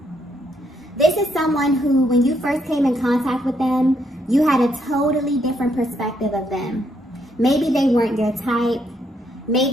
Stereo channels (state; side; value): normal; both; correlation 0.75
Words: This is someone who, when you first came in contact with them, you had a totally different perspective of them. Maybe they weren't your type.